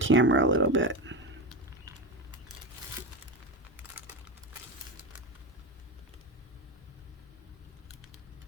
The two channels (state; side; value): normal; both; correlation 0.19